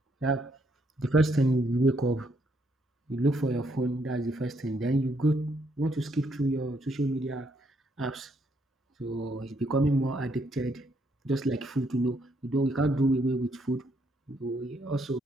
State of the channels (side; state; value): both; normal; correlation 0.73